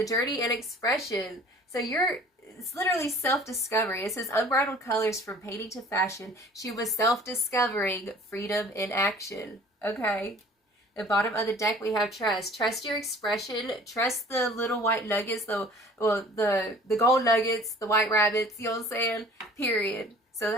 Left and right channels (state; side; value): normal; both; correlation 0.49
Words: journey and expression. So it's literally self-discovery. It says unbridled colors from painting to fashion. She was self-discovering freedom in action. Okay. The bottom of the deck we have trust. Trust your expression. Trust the little white nuggets, the gold nuggets, the white rabbits, you know what I'm saying? Period. So